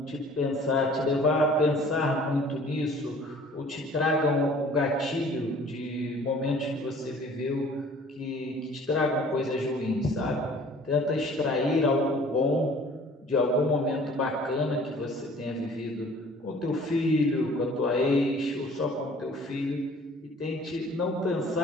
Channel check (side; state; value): both; normal; correlation 0.51